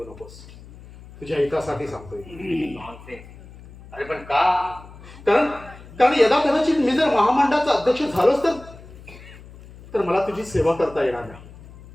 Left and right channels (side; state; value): left; noise; hum, 19 dB below the sound